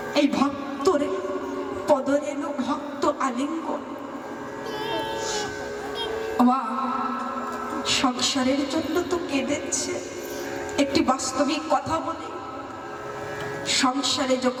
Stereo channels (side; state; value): both; identical; correlation 1.00